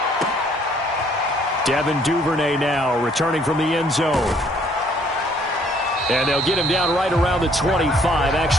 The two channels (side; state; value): both; normal; correlation 0.62